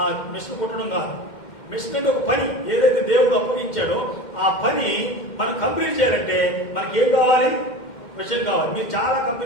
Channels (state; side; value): late; right; 2.1 ms